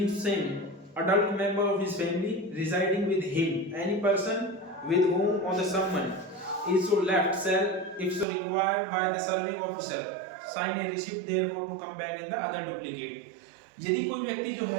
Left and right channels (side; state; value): left; drops out; at 8.2 s